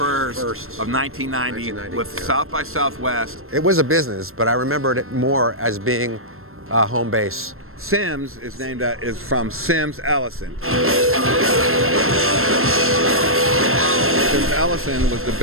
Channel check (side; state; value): left; late; 0.62 ms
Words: of 1990 with South by Southwest. It was a business, but I remembered it more as being home base. Sims is from Sims Ellison. Sims Ellison was the